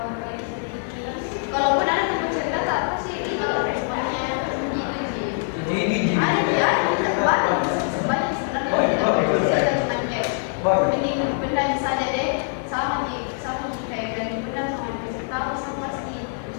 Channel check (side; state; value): right; silent; 63 dB below the other